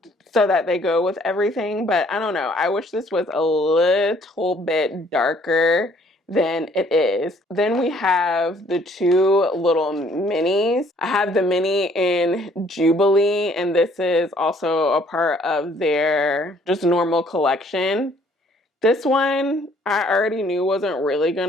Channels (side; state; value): both; normal; correlation 0.61